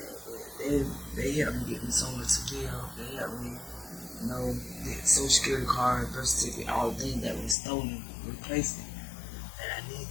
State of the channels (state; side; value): drops out; right; at 7.6 s